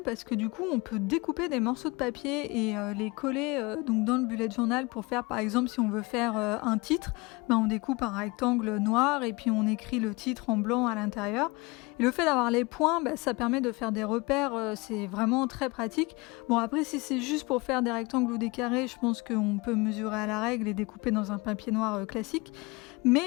parce que du coup on peut découper des morceaux de papier et les coller donc dans le bullet journal pour faire par exemple si on veut faire un titre, on découpe un rectangle noir et puis on écrit le titre en blanc à l'intérieur. Et le fait d'avoir les points, ça permet de faire des repères, c'est vraiment très pratique. Bon après si c'est juste pour faire des rectangles ou des carrés, je pense qu'on peut mesurer à la règle et découper dans un papier noir classique. Mais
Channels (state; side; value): quieter; right; 25.2 dB